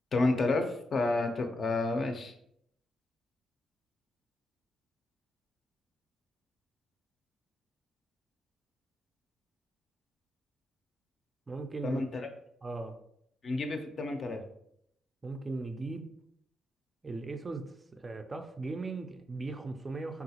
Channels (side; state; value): both; normal; correlation 0.85